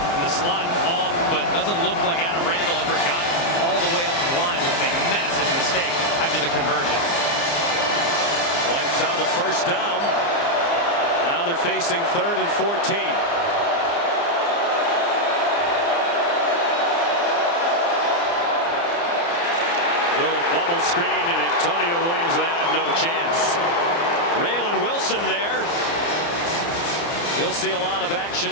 in the slot off, but doesn't look like Adam Randall ever got all the way up the line, which is a massive mistake after the conversion. Wipes out a first down. Now they're facing 3rd and 14. Little bubble screen, and Antonio Williams will have no chance. Raylan Wilson there. He'll see a lot of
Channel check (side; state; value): right; late; 29 ms